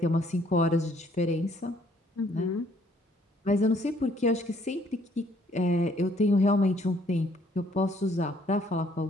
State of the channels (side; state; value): both; normal; correlation 0.64